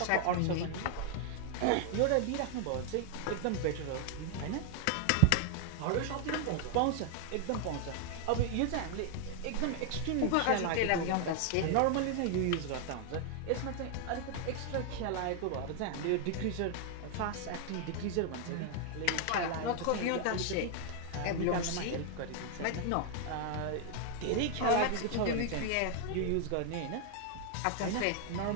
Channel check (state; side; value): different; both; correlation 0.00